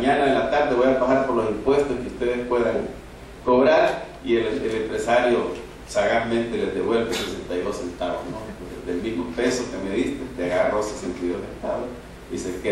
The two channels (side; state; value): both; identical; correlation 1.00